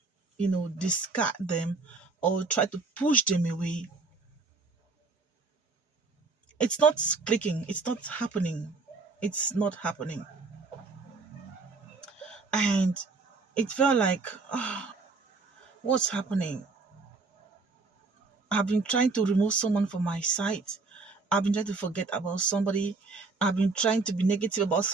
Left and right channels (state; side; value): quieter; left; 4.0 dB